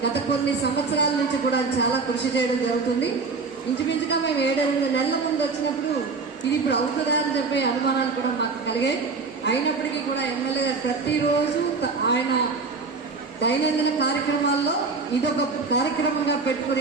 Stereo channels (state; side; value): quieter; left; 4.4 dB